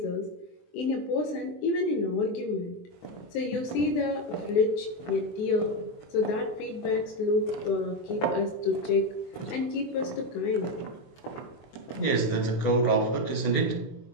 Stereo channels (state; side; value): late; right; 23 ms